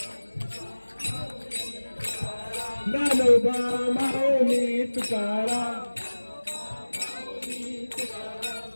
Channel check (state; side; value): inverted; both; correlation -1.00